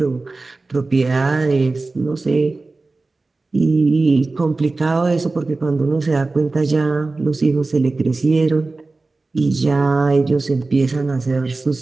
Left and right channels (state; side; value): quieter; left; 3.5 dB